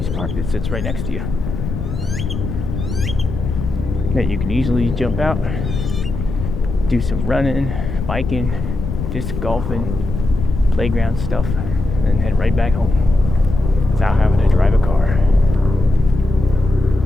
park that sits right next to you that you can easily jump out, do some running, biking, disc golfing, playground stuff, and head right back home without having to drive a car.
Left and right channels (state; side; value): noise; left; rumble, 5 dB below the sound